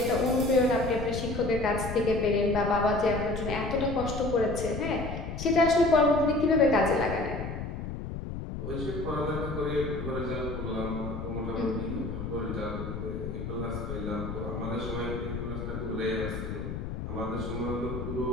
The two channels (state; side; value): noise; left; rumble, 6 dB below the sound